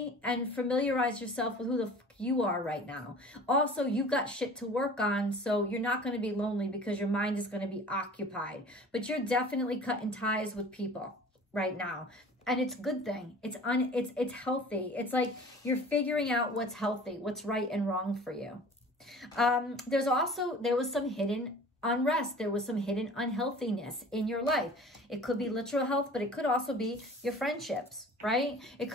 and familiarize yourself with who the fuck you are right now. Also, you got shit to work on, so you're not going to be lonely because your mind is going to be occupied. But you're definitely cutting ties with people right now. And it's a good thing. It's healthy. It's like you're figuring out what's healthy, what's right and wrong for you. There was some hidden unrest. There was some hidden unhealthiness in your life. It could be literal health, but it could also be your friendships, right? It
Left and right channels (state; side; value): normal; both; correlation 0.44